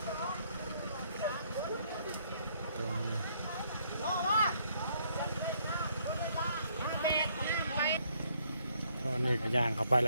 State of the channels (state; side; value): inverted; both; correlation -0.68